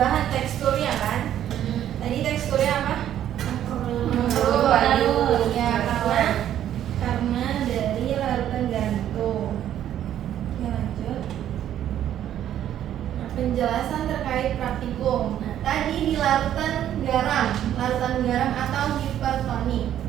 teksturnya kan. Tadi teksturnya apa? Layu. Ya, karena dari larutan garam itu. Oke, lanjut. Nah, penjelasan terkait praktikum. Nah, tadi di larutan garam atau hipertonik,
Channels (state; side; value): quieter; left; 11.1 dB